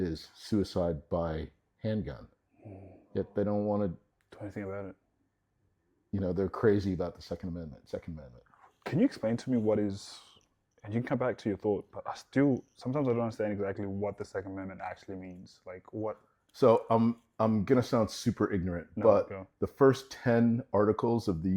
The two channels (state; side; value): identical; both; correlation 1.00